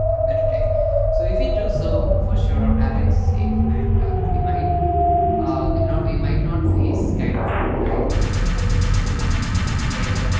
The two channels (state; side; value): identical; both; correlation 1.00